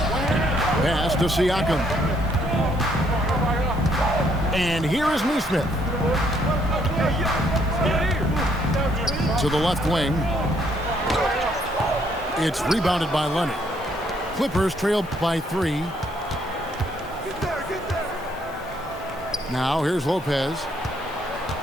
Pass to Siakam. And here is Neesmith. To the left wing. It's rebounded by Leonard. Clippers trailed by 3. Now here's Lopez.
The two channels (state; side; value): normal; both; correlation 0.69